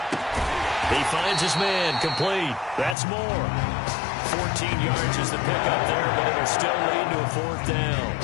He finds his man, complete. That's more. 14 yards is the pickup there, but it'll still lead to a 4th down.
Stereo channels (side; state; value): right; drops out; at 3.0 s